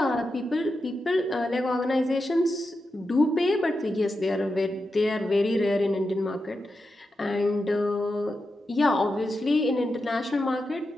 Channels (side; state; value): both; normal; correlation 0.89